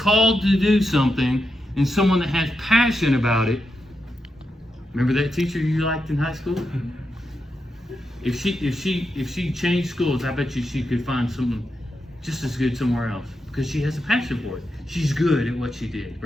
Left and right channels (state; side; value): normal; both; correlation 0.86